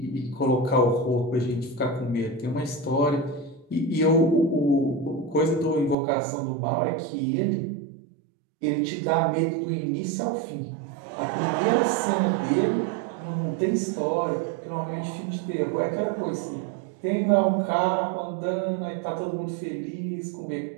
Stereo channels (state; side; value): drops out; left; at 6.0 s